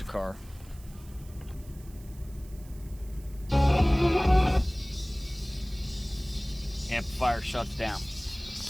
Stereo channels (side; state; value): right; noise; hiss, 24 dB below the sound